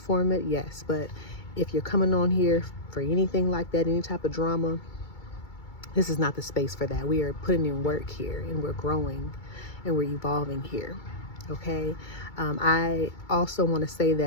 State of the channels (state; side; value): late; right; 2.3 ms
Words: it? Yes. But if you're coming on here for anything like that, any type of drama, this is not the space for that. We are putting in work here, and we're growing and we're evolving here. Okay. I also want to say